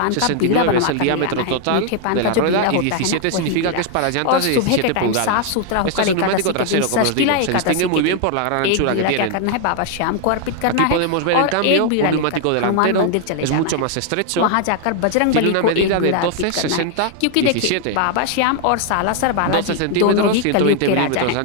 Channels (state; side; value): different; both; correlation 0.00